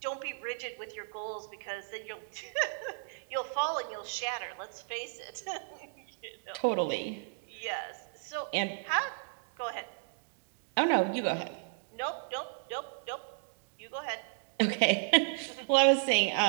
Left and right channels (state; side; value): silent; left; digital silence